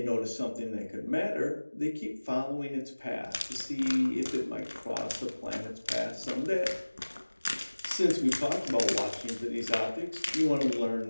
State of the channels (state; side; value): inverted; both; correlation -1.00